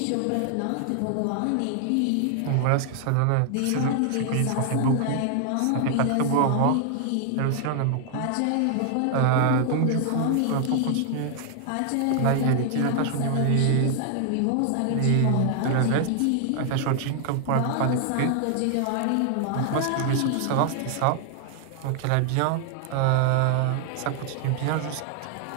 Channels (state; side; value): different; both; correlation 0.00